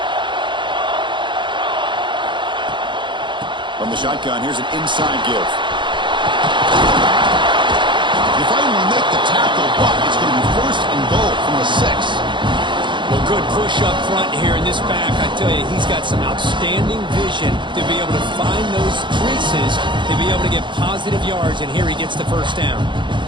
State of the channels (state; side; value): late; left; 0.23 ms